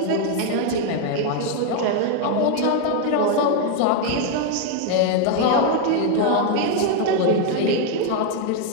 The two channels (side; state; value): both; different; correlation 0.01